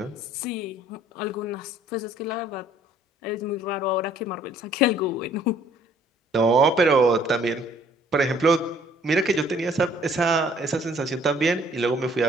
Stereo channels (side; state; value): both; normal; correlation 0.59